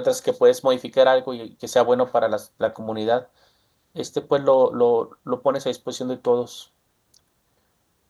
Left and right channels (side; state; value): both; identical; correlation 1.00